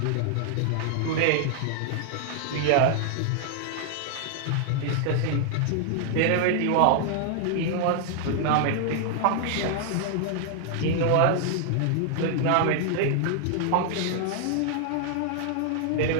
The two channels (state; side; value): different; both; correlation 0.00